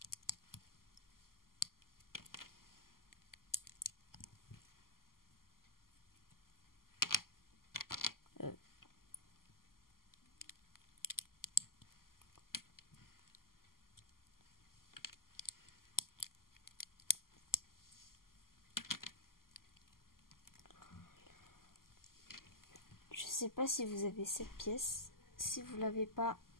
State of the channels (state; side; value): late; right; 0.92 ms